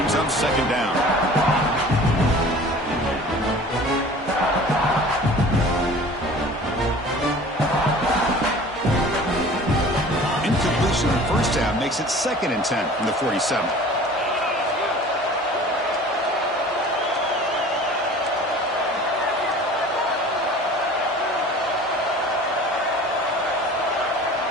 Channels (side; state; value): both; normal; correlation 0.44